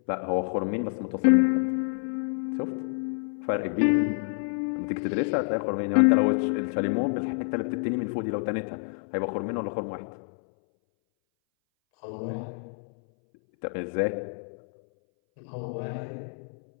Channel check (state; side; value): silent; right; 60 dB below the other